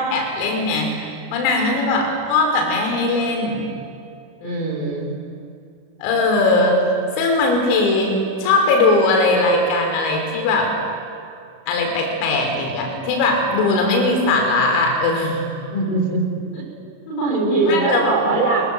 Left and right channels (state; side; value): late; right; 37 ms